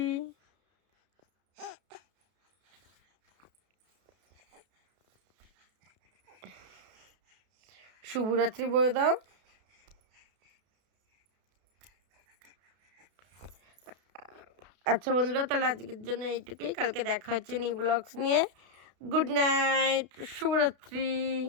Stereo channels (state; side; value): late; left; 32 ms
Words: শুভরাত্রি বলে দাও। আচ্ছা বন্ধুরা, তাহলে আজকের জন্য এইটুকুই, কালকে দেখা হচ্ছে নিউ ব্লগস নিয়ে। গুড নাইট, শুভরাত্রি।